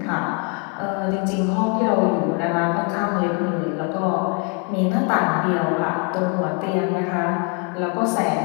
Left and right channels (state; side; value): quieter; right; 31.9 dB